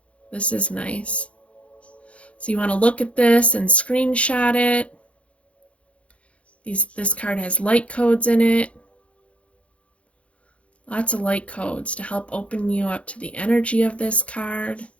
This is nice. So you want to look at this and screenshot it. This card has light codes in it. Lots of light codes to help open you up to the energy of this card.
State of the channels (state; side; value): late; right; 0.062 ms